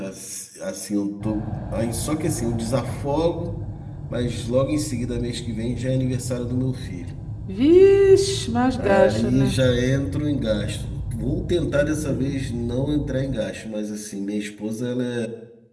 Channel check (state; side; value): identical; both; correlation 1.00